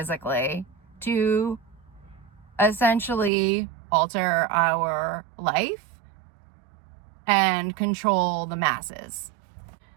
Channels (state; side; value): drops out; left; at 3.3 s